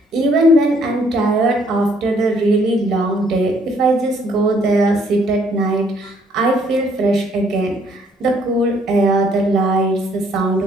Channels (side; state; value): both; normal; correlation 0.65